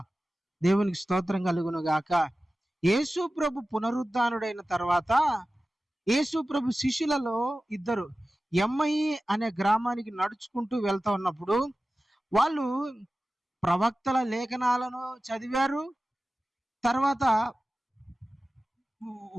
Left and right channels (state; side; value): normal; both; correlation 0.95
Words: దేవునికి స్తోత్రం కలుగును గాక. యేసు ప్రభు పునరుద్ధానుడైన తర్వాత యేసు ప్రభు శిష్యులలో ఇద్దరు ఎమ్మయి అనే గ్రామానికి నడుచుకుంటూ వెళ్తా ఉన్నప్పుడు వాళ్ళు ప్రవక్తల లేఖనాలను చదివారు, తర్వాత